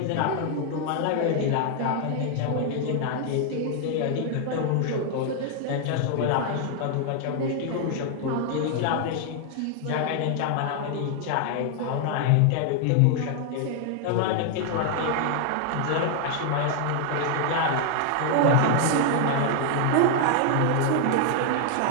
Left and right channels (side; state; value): both; different; correlation 0.00